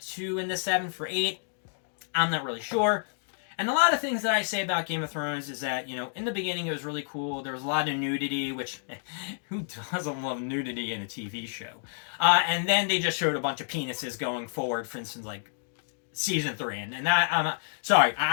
into 7 for 8. I'm not really sure. And a lot of things that I say about Game of Thrones is that, in the beginning it was really cool. There was a lot of nudity, which, who doesn't love nudity in a TV show? And then they just showed a bunch of penises going forward, for instance, like, season 3. And that, I'm not, sorry,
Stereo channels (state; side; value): silent; right; digital silence